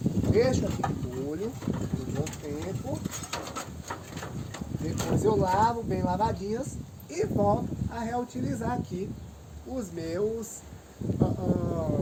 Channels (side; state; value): both; identical; correlation 1.00